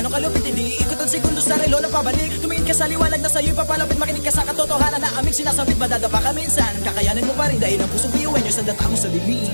kalupit, hindi ikot ang segundo sa relo na pabalik. Tumingin ka sa liwanag na sa'yo'y papalapit, makinig ka sa katotohanan na aming sinasabit. Madadapa ka minsan, kakayanin mo pa rin dahil ang pusong biyuin nyo sa data mo sa dilim.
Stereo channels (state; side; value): inverted; both; correlation -1.00